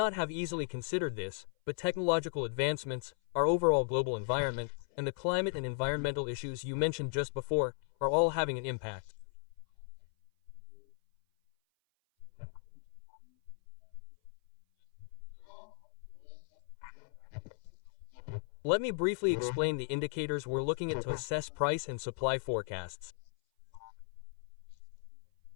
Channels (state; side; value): silent; right; 54 dB below the other